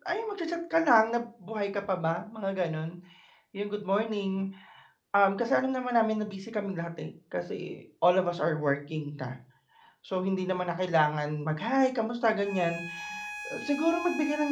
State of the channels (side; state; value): both; identical; correlation 1.00